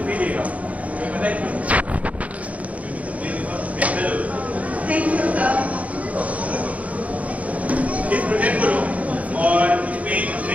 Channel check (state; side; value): late; left; 0.069 ms